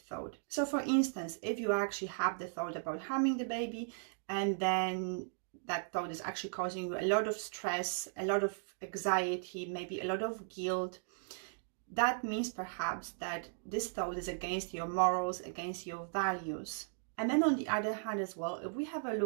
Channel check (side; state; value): left; silent; digital silence